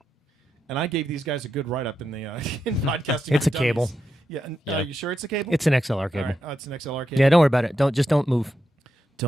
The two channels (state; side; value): normal; both; correlation 0.86